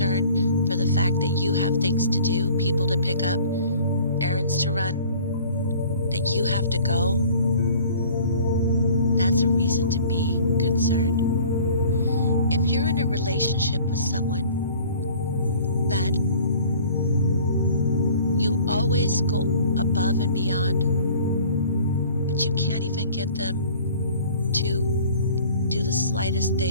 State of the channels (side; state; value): both; inverted; correlation -0.49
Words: for the fact that you have things to do, people to pick up, errands to run, that you have to go, that's a reason to be concerned. If you're in a relationship with someone that you always go above and beyond, but you can't even get them to do the slightest